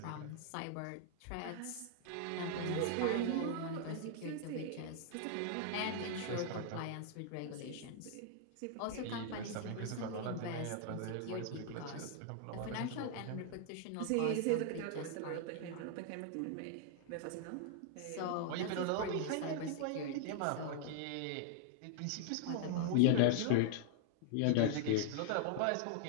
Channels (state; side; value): different; both; correlation -0.01